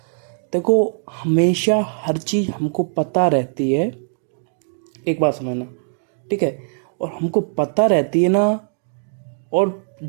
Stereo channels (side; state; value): left; silent; digital silence